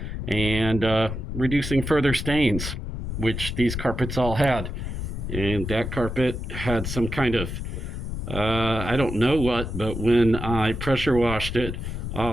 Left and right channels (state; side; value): noise; left; rumble, 5 dB below the sound